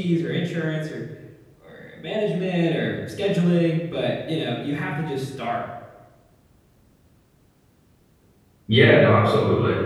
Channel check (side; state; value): both; identical; correlation 1.00